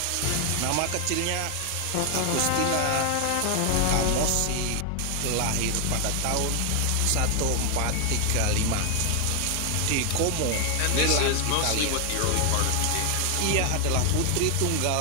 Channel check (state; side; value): different; both; correlation 0.00